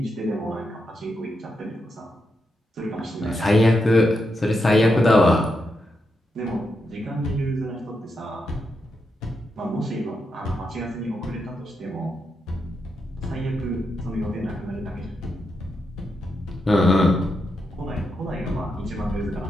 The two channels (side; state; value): both; normal; correlation 0.84